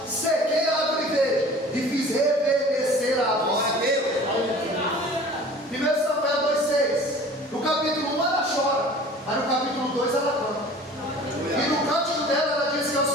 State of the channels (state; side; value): normal; both; correlation 0.45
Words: sequei a árvore verde e fiz reverdecer a árvore. 1 Samuel 2:6 no capítulo 1 ela chora, mas no capítulo 2 ela canta. E no cântico dela ela diz que é o